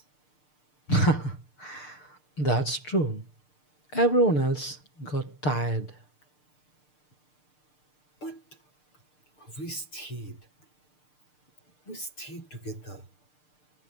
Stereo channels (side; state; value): right; late; 6.7 ms